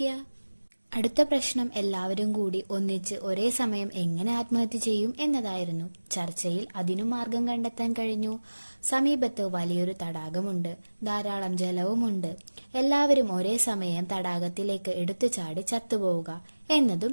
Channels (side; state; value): both; inverted; correlation -1.00